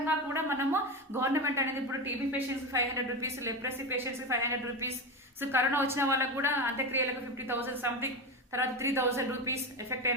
కూడా మనము government అనేది ఇప్పుడు TB patients 500 rupees, leprosy patients 500 rupees, so corona వచ్చిన వాళ్ళకు కూడా అంత్యక్రియలకు 50,000 సంథింగ్, తర్వాత 3,000 రూపీస్ ఎఫెక్ట్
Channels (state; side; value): normal; both; correlation 0.19